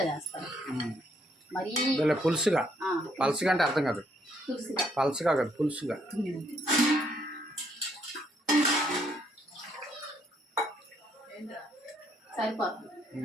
చేస్తాను. మరీ పులుసుగా. పలుసుగా అంటే అర్థం కాదు. పలుసుగా కాదు, పులుసుగా. సరిపోతుంది.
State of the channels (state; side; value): normal; both; correlation 0.70